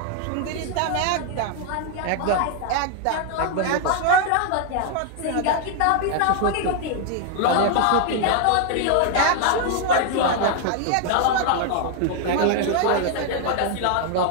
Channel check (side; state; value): both; different; correlation 0.00